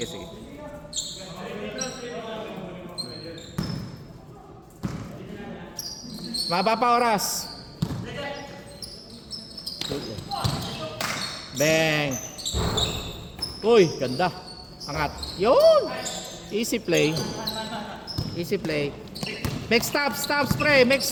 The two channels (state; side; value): identical; both; correlation 1.00